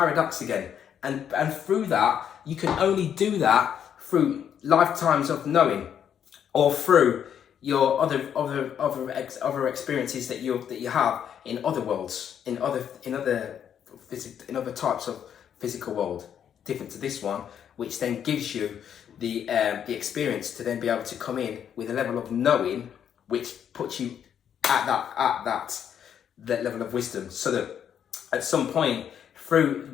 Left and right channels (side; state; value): right; quieter; 8.8 dB